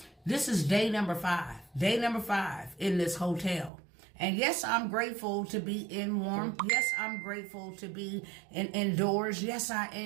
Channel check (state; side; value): drops out; left; at 3.7 s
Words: This is day number 5. Day number 5 in this hotel. And yes, I'm grateful to be in warm. Yes, I'm grateful to be indoors. Yes, I